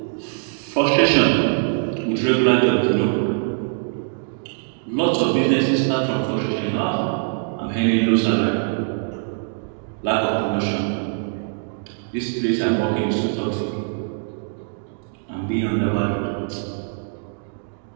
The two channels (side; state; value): left; silent; 62 dB below the other